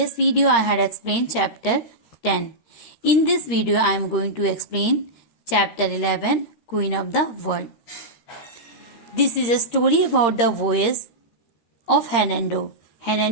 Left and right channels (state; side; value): late; right; 13 ms